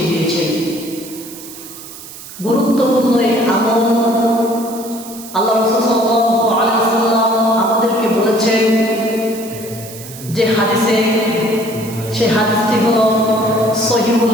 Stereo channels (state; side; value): noise; right; hiss, 15 dB below the sound